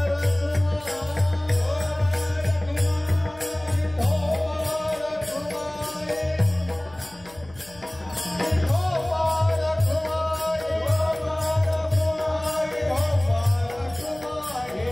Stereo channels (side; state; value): left; noise; hum, 24 dB below the sound